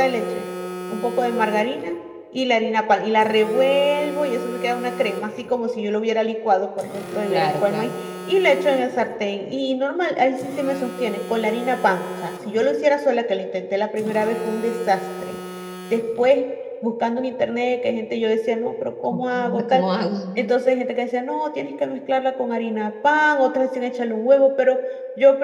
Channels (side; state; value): both; identical; correlation 1.00